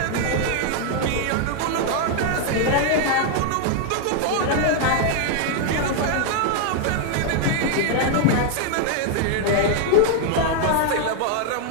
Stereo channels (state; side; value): different; both; correlation 0.00